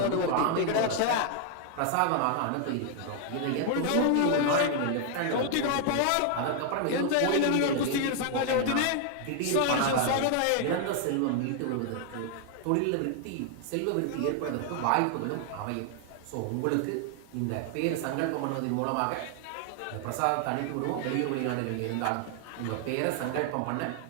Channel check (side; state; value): both; different; correlation 0.00